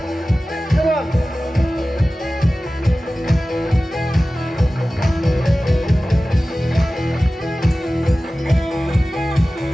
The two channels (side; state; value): both; normal; correlation 0.96